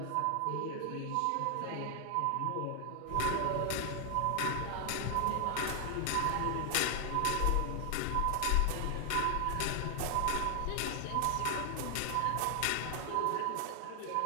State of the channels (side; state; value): both; different; correlation 0.00